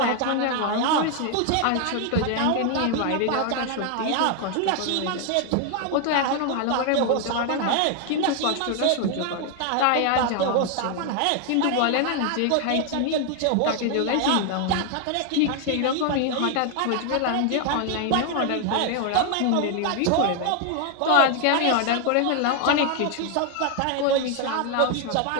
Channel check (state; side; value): different; both; correlation 0.00